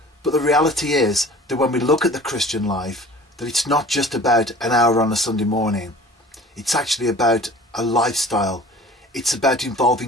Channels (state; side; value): normal; both; correlation 0.44